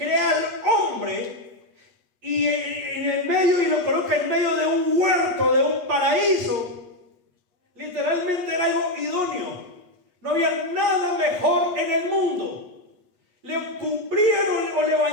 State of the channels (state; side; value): late; left; 8.3 ms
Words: al hombre y en el medio, y lo coloca en medio de un huerto, de un paraíso. Literalmente era algo idóneo. No había nada mejor en el mundo. Le cumplieron o le